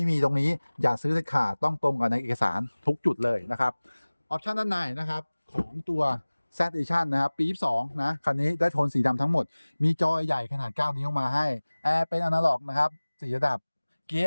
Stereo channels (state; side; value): inverted; both; correlation -1.00